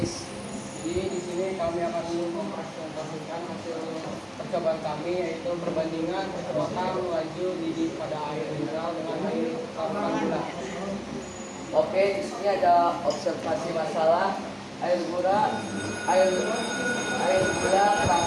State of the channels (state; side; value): identical; both; correlation 1.00